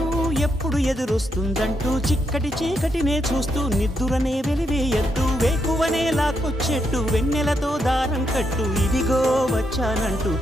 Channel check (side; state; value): both; normal; correlation 0.80